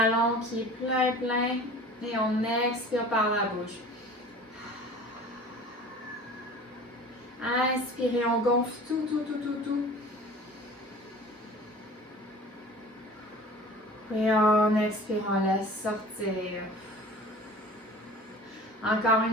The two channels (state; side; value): normal; both; correlation 0.42